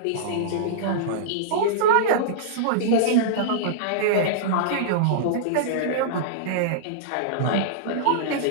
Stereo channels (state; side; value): different; both; correlation -0.03